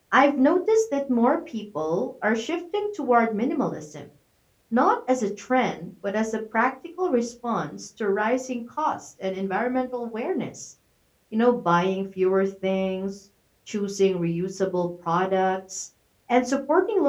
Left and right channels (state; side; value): identical; both; correlation 1.00